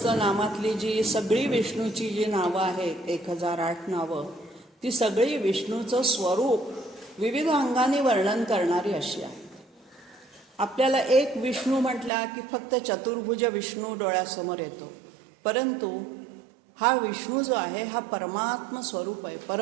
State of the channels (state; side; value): drops out; left; at 12.1 s